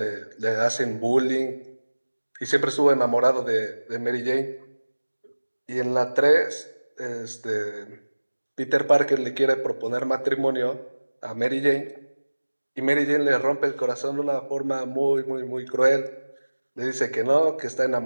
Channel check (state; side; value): inverted; both; correlation -1.00